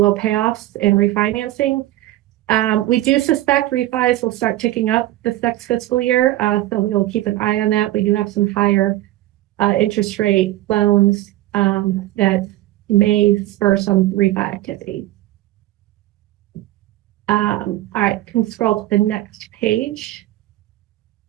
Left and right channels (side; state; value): left; quieter; 15.6 dB